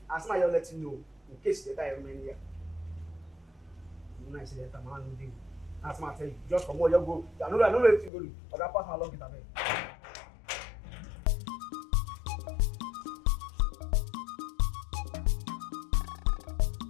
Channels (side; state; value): right; drops out; at 8.1 s